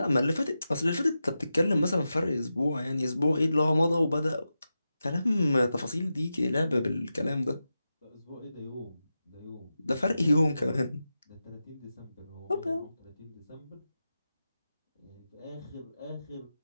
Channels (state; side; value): inverted; both; correlation -0.91